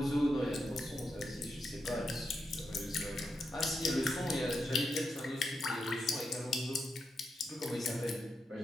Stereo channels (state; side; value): normal; both; correlation 0.85